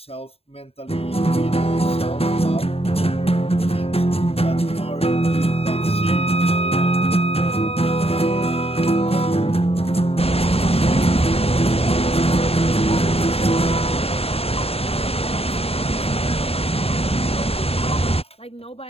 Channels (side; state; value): right; late; 0.29 ms